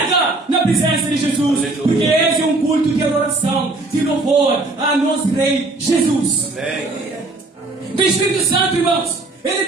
na presença de Jesus, porque esse é um culto de adoração, de louvor a nosso Rei Jesus. O Espírito Santo, irmãos, ele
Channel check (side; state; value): left; quieter; 3.1 dB